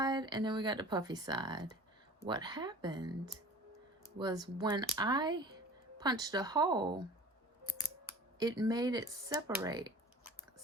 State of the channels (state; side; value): normal; both; correlation 0.43